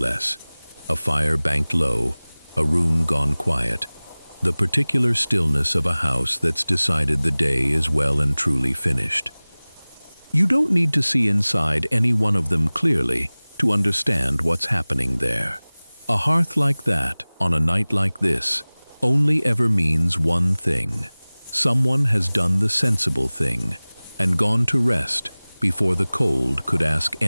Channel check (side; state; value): both; inverted; correlation -1.00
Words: A fire banked low, a room gone quiet, the particular stillness of a house that's decided the day is well and truly finished. You don't need to see inside any one of them clearly to understand what's happening there. A hearth like that, on a night like this, only ever means one thing. Someone has done the sensible thing and gone to rest before the cold could ask